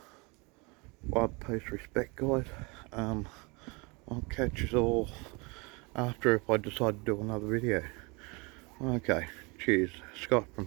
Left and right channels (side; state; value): left; quieter; 28.1 dB